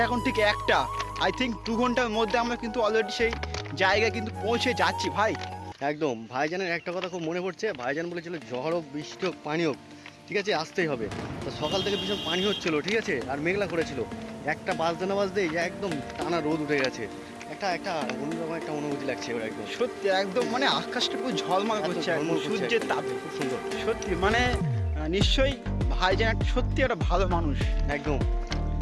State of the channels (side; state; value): both; identical; correlation 1.00